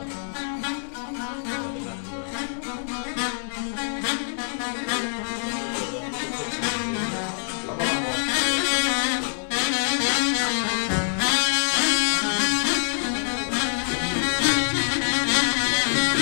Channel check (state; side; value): silent; right; 62 dB below the other